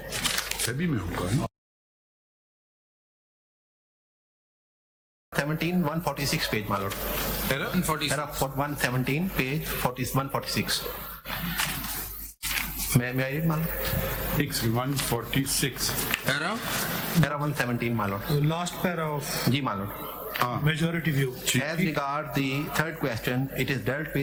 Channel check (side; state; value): both; identical; correlation 1.00